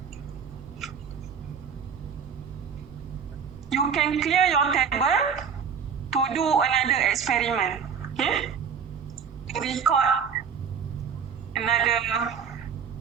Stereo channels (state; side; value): quieter; left; 6.8 dB